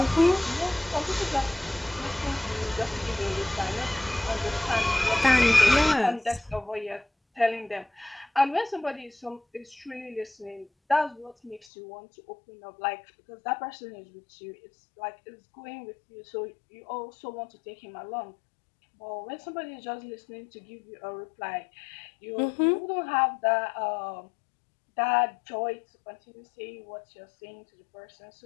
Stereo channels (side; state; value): right; drops out; at 11.7 s